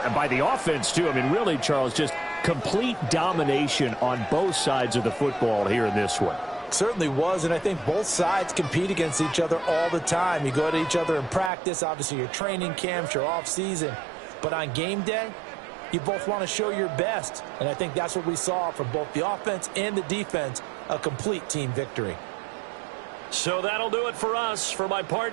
by the offense, too. I mean, really, Charles, just complete domination on both sides of the football here in this one. Certainly was, and I think both sides compete against each other all the time. You go at each other in practice, obviously your training camps, your off-season. But on game day, you both want to show your best, and I think that's what we saw from both the offense and the defense, a complete team victory. So that'll do it for us. For my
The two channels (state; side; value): drops out; left; at 11.5 s